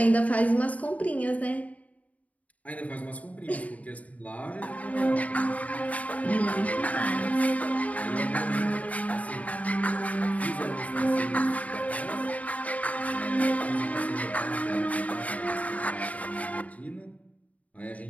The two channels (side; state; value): right; late; 0.070 ms